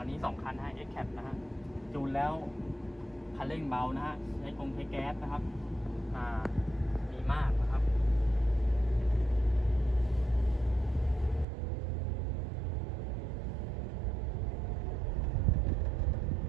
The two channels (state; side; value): drops out; left; at 11.5 s